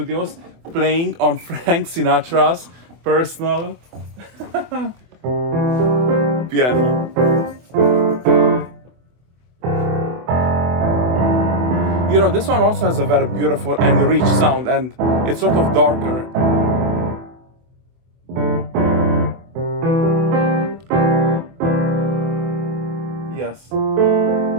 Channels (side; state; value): left; late; 24 ms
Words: playing on Frank Sinatra's personal piano. You know, this one also has a very beautiful and rich sound, and it's sort of darker. Yes.